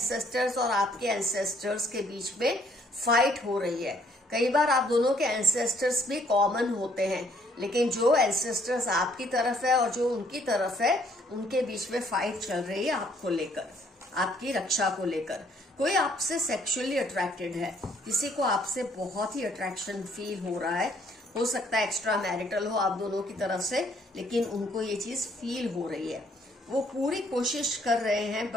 और आपके एंसेस्टर्स के बीच में फाइट हो रही है। कई बार आप दोनों के एंसेस्टर्स भी कॉमन होते हैं, लेकिन जो एंसेस्टर्स आपकी तरफ है और जो उनकी तरफ है, उनके बीच में फाइट चल रही है आपको लेकर, आपकी रक्षा को लेकर। कोई आपसे सेक्सुअली अट्रैक्टेड है, किसी को आपसे बहुत ही अट्रैक्शन फील हो रहा है, हो सकता है एक्स्ट्रा मैरिटल हो आप दोनों की तरफ से, लेकिन उनको ये चीज फील हो रही है। वो पूरी कोशिश कर रहे हैं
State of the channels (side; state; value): both; normal; correlation 0.65